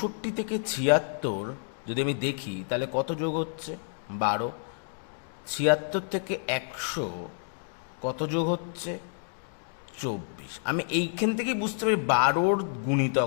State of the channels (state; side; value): silent; right; digital silence